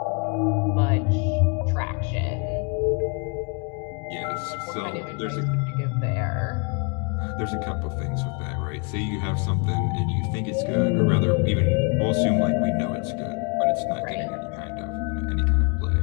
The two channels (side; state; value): right; quieter; 34.9 dB